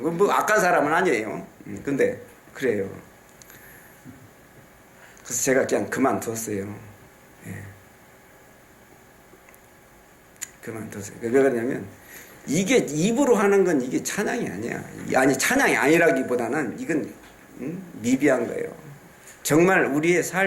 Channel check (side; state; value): both; identical; correlation 1.00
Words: 악한 사람은 아니에요. 근데 그래요. 그래서 제가 그냥 그만뒀어요. 예. 그만뒀어요. 왜 그러냐면 이게 입으로 하는 건 이게 찬양이 아니야. 아니 찬양이 아니라기보다는 이건 미비한 거예요. 정말 우리의